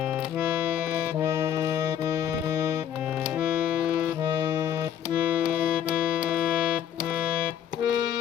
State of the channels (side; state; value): right; quieter; 9.6 dB